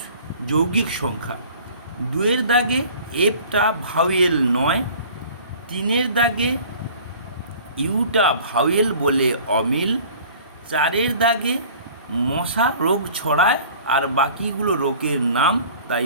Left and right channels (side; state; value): both; inverted; correlation -0.47